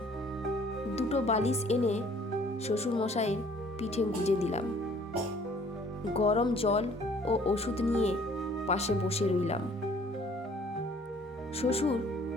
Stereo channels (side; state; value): both; normal; correlation 0.57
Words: দুটো বালিশ এনে শ্বশুর মশাইয়ের পিঠে গুজে দিলাম। গরম জল ও ওষুধ নিয়ে পাশে বসে রইলাম। শ্বশুর